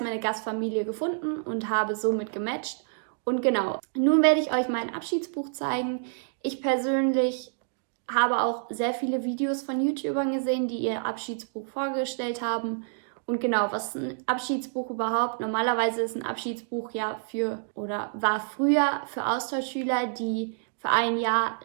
Gastfamilie gefunden und habe somit gematcht. Und genau, nun werde ich euch mein Abschiedsbuch zeigen. Ich persönlich habe auch sehr viele Videos von YouTubern gesehen, die ihr Abschiedsbuch vorgestellt haben. Und genau, was ist ein Abschiedsbuch überhaupt? Normalerweise ist ein Abschiedsbuch ja war früher für Austauschschüler, die für ein Jahr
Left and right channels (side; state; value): left; silent; digital silence